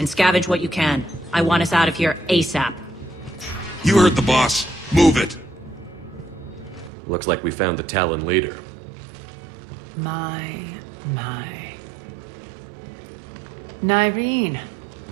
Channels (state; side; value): drops out; left; at 6.9 s